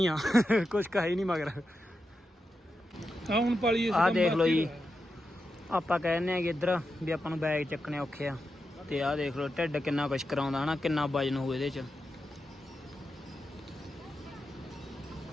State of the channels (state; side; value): normal; both; correlation 0.88